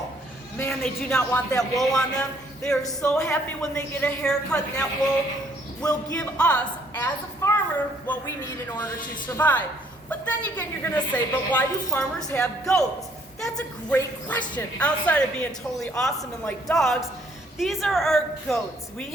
Man, they do not want that wool on them. They are so happy when they get a haircut, and that wool will give us, as a farmer, what we need in order to survive. But then again, you're gonna say, but why do farmers have goats? That's a great question. Outside of being totally awesome and like dogs, these are our goats. We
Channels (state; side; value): normal; both; correlation 0.64